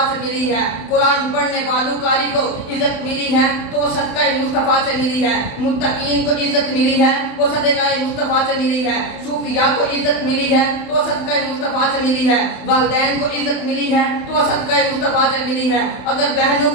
سے ملی ہے قرآن پڑھنے والوں قاری کو عزت ملی ہے تو وہ صدقہ مصطفیٰ سے ملی ہے متقین کو عزت ملی ہے وہ صدقہ مصطفیٰ سے ملی ہے صوفیاء کو عزت ملی ہے تو وہ صدقہ مصطفیٰ سے ملی ہے والدین کو عزت ملی ہے تو وہ صدقہ مصطفیٰ سے ملی ہے اگر بہنوں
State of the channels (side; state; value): right; late; 28 ms